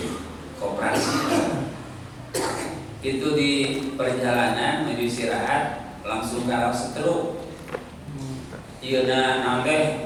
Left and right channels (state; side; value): identical; both; correlation 1.00